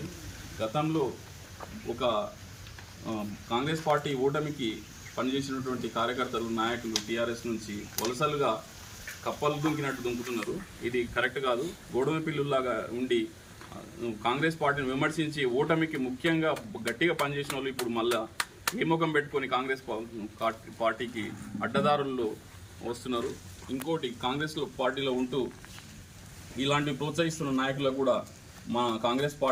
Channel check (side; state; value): both; identical; correlation 1.00